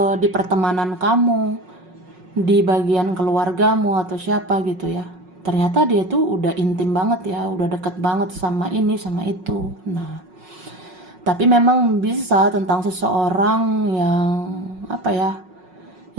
di pertemanan kamu, di bagian keluargamu atau siapa gitu ya. Ternyata dia tuh udah intim banget ya, udah deket banget sama ini sama itu. Nah, tapi memang bisa tentang seseorang yang apa ya,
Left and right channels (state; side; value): late; left; 5.5 ms